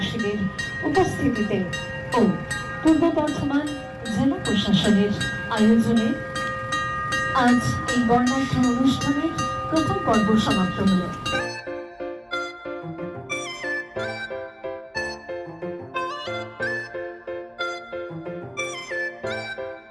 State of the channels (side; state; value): both; identical; correlation 1.00